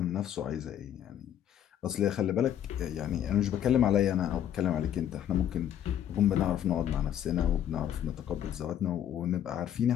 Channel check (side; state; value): right; quieter; 10.2 dB